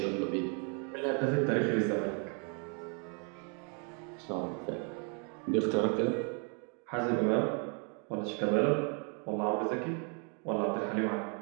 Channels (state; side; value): quieter; left; 37.7 dB